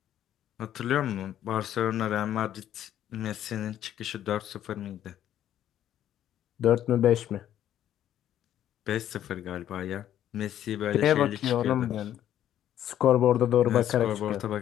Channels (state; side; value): quieter; right; 11.2 dB